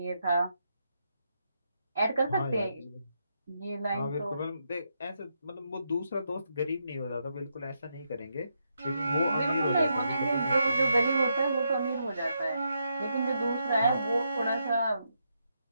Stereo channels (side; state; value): both; inverted; correlation -0.80